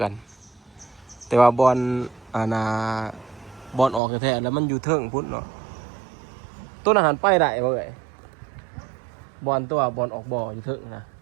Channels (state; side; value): drops out; left; at 4.0 s